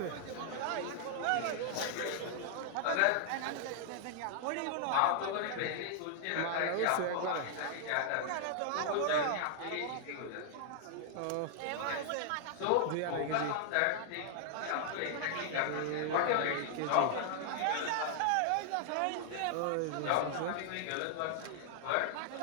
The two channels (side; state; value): both; different; correlation -0.01